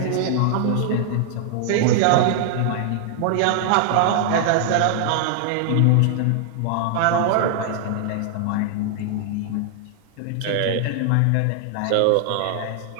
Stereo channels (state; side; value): different; both; correlation 0.00